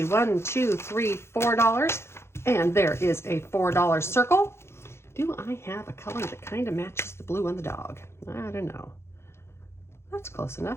1, 2, 3, $4. And there is a $4 circle. Do I have a color that kind of matches the blue on the dog? I don't know. That's close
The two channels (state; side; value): late; right; 0.12 ms